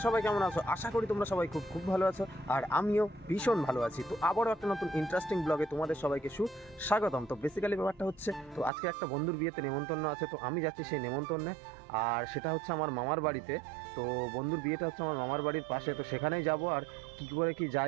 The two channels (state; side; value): drops out; left; at 8.7 s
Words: সবাই কেমন আছো? আশা করি তোমরা সবাই খুব খুব ভালো আছো, আর আমিও ভীষণ ভালো আছি। তো আবারও একটা নতুন ইন্টারেস্টিং ব্লগে তোমাদের সবাইকে সুস্বাগতম। তো বেসিক্যালি ব্যাপারটা হচ্ছে, তো আজকে একটা বন্ধুর বিয়েতে নেমন্তন্ন আছে, তো আমি যাচ্ছি সেই নেমন্তন্নে। আর সেটা হচ্ছে আমার মামার বাড়িতে। তো বন্ধুর বিয়েটা হচ্ছে আমার মামার বাড়ির পাশে, তো সেখানেই যাব। আর কী করে কি